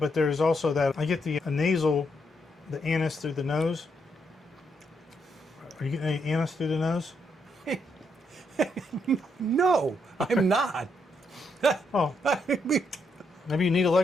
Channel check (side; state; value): both; normal; correlation 0.77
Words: there's also that I get the nasal, the anise through the nose. Are you getting any anise through the nose? No, I'm not. Oh, okay. maybe you need